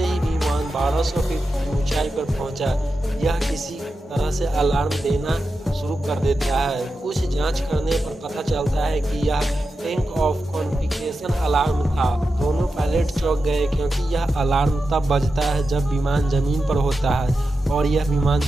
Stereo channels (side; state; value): both; normal; correlation 0.90